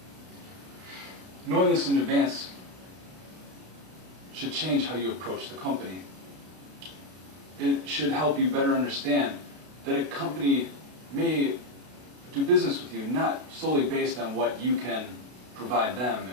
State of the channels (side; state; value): left; late; 32 ms